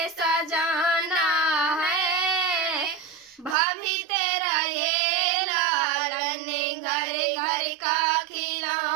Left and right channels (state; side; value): drops out; left; at 3.6 s